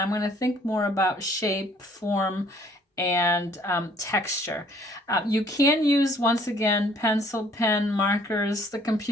going to think more about shape, form, and texture. You can use, once again, pencil, pen, markers, the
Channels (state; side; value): normal; both; correlation 0.59